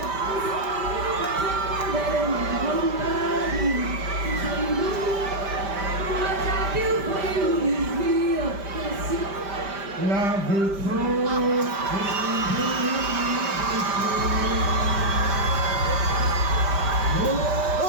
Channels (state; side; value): late; left; 5.1 ms